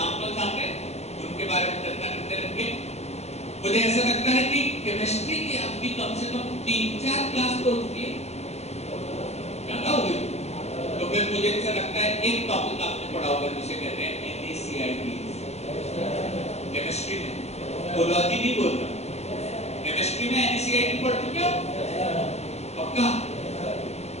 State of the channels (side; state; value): right; late; 0.31 ms